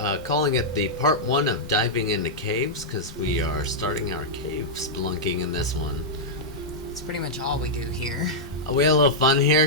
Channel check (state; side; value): normal; both; correlation -0.08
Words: calling it the part 1 of diving into caves, because we are starting our cave spelunking in this one. It's pretty much all we do here. We had a little fun here.